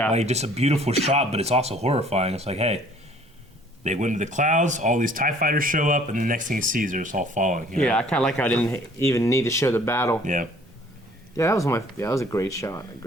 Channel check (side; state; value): both; normal; correlation 0.56